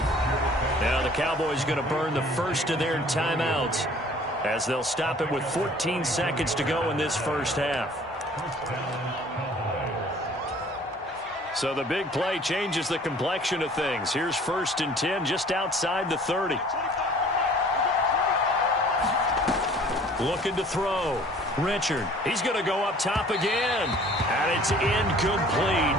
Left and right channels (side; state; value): both; normal; correlation 0.52